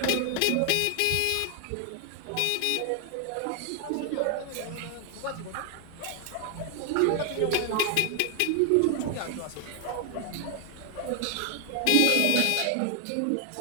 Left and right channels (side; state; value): both; different; correlation 0.00